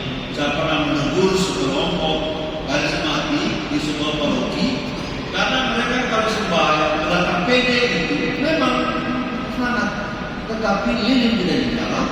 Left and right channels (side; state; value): both; identical; correlation 1.00